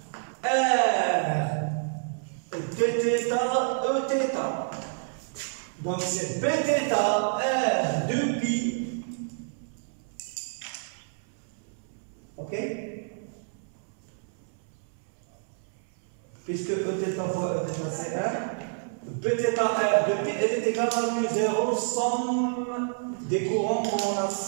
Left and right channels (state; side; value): silent; left; 59 dB below the other